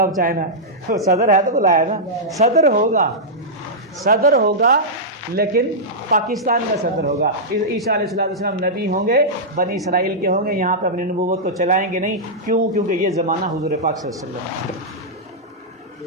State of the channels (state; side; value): normal; both; correlation -0.10